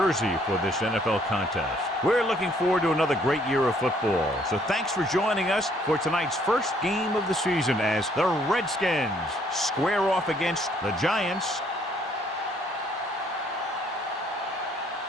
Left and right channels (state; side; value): normal; both; correlation 0.65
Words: for this NFL contest. We're looking forward to another great year of football. So thanks for joining us for tonight's first game of the season as the Redskins square off against the Giants.